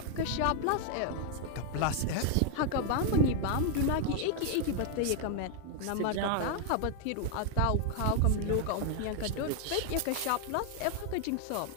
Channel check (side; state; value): both; different; correlation 0.00